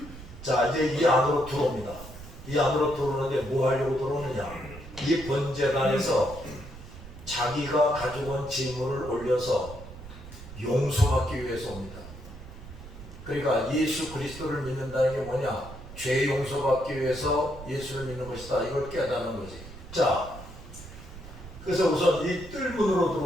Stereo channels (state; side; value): noise; right; rumble, 15 dB below the sound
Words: 자, 이제 이 안으로 들어옵니다. 이 안으로 들어오는데 뭐 하려고 들어오느냐? 이 번제단에서 자기가 가져온 재물을 올려서 용서받기 위해서 옵니다. 그러니까 예수 그리스도를 믿는다는 게 뭐냐? 죄 용서받기 위해서 예수를 믿는 것이다. 이걸 깨닫는 거지. 자, 그래서 우선 이 뜰문으로